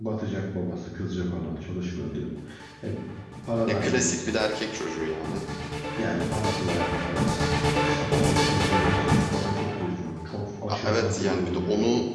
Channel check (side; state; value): both; identical; correlation 1.00